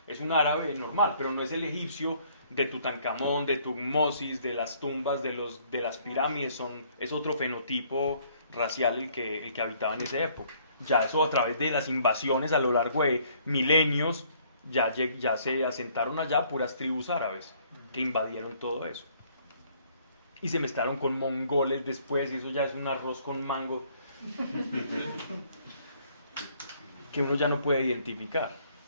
un árabe normal, pero no es el egipcio de Tutankamón, de Tutmosis, de las tumbas, de las pirámides. Es otro fenotipo racial el que habitaba en esa época. Ya eso a través de las invasiones a lo largo de milenios, ya se asentaron allá puras tribus árabes que invadieron todo eso. Y se mezclaron con mongoles después, y eso ya es un arroz con mango que uno ya no puede identificar.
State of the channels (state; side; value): inverted; both; correlation -0.63